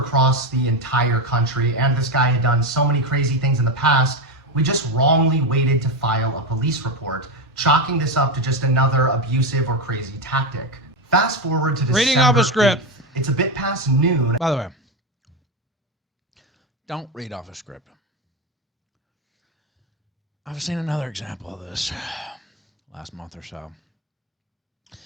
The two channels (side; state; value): both; normal; correlation 0.12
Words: the entire country and this guy had done so many crazy things in the past, we just wrongly waited to file a police report, chalking this up to just another abusive or crazy tactic. Fast forward to December Reading off a script. 8th. It's a bit past noon. By the way, don't read off a script. I've seen another example of this last month or so.